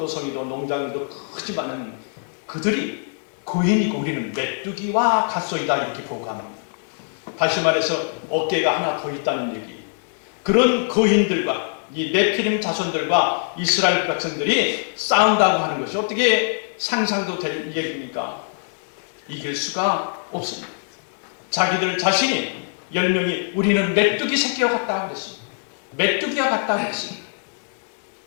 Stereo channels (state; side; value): silent; right; digital silence